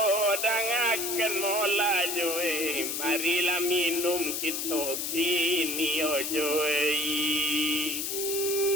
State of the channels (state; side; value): noise; left; hiss, 2 dB below the sound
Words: dangaken mola joe marilah minum kita kini ojoe